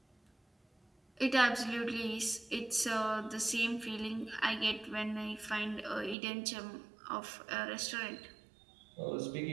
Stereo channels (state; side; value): drops out; left; at 6.2 s